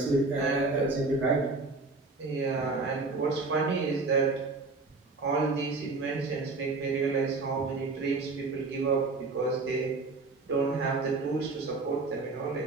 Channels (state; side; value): quieter; left; 3.7 dB